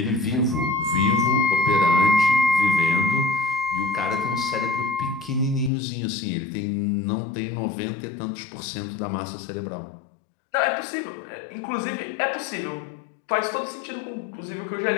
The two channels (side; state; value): right; drops out; at 5.7 s